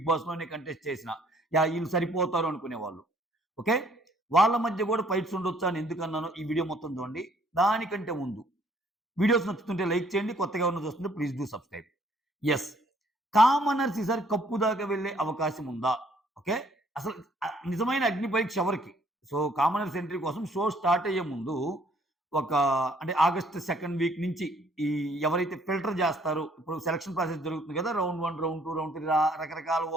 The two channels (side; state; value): both; normal; correlation 0.62